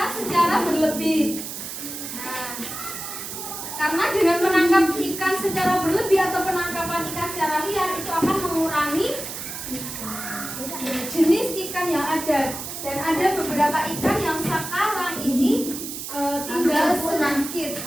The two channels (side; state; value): right; noise; hiss, 8 dB below the sound